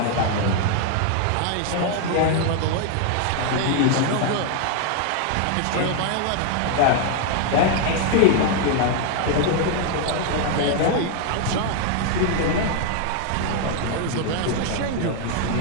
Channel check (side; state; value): both; different; correlation 0.00